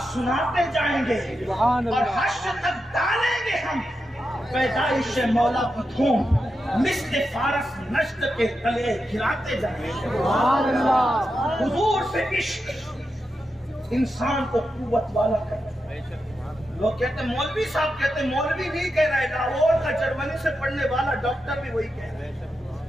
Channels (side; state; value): both; normal; correlation 0.88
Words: سناتے جائیں گے اور حشر تک ڈالیں گے ہم پیدائش مولا کی دھوم. مثل فارس نجد کے گلے گراتے جائیں گے. حضور سے عشق انسان کو قوت والا کرتا ہے. لوگ کہتے ہیں مولوی صاحب کہتے ہیں، مولوی نہیں کہہ رہے، لاہور کا جرمنی سے پڑھنے والا ڈاکٹر بھی وہی کہہ رہے.